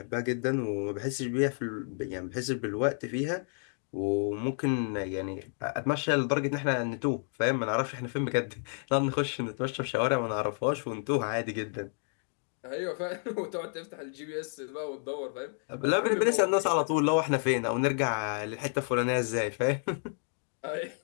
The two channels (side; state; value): right; silent; 57 dB below the other